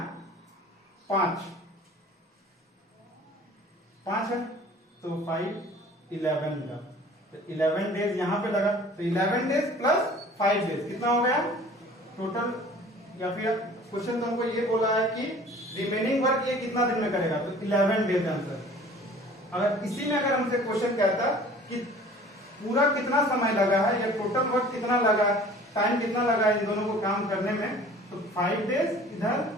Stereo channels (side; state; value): both; normal; correlation 0.47